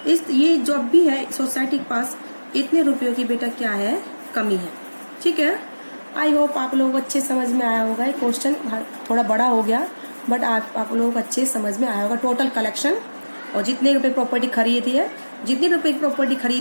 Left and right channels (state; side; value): inverted; both; correlation -1.00